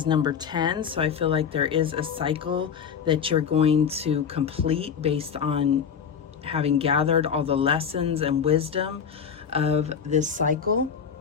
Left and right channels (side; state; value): right; quieter; 7.2 dB